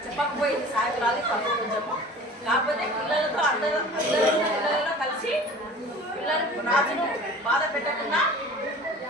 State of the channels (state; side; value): normal; both; correlation 0.42